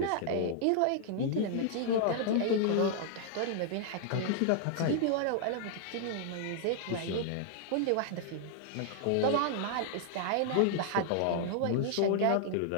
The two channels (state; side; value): different; both; correlation -0.01